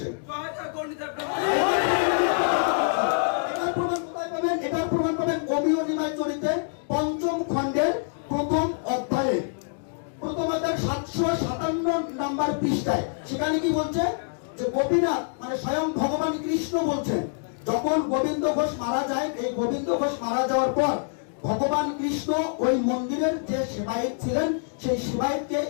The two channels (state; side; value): silent; right; digital silence